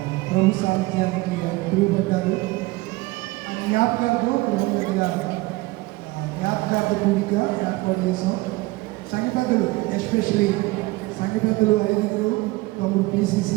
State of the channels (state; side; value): quieter; left; 21.4 dB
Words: ప్రభు సాహిత్యానికి పిలువబడ్డారు. ఆయన జ్ఞాపకాలతో గృహం దగ్గర జ్ఞాపకార్థ కూడిక ఏర్పాటు చేసాం. సంఘ పెద్దలు, ఎస్పెషలీ సంఘ పెద్దలు 5 తమ్ముడు